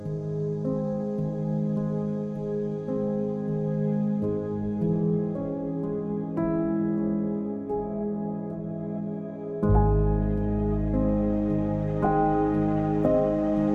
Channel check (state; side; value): identical; both; correlation 1.00